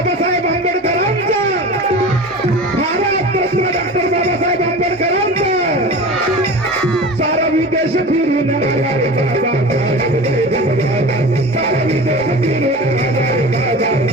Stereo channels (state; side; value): normal; both; correlation 0.34